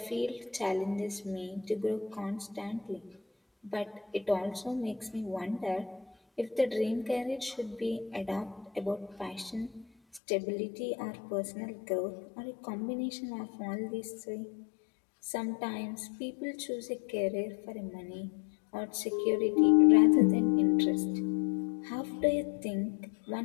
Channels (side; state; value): right; drops out; at 10.2 s